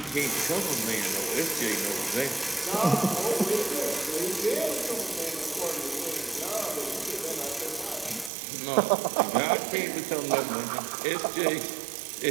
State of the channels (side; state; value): left; drops out; at 8.3 s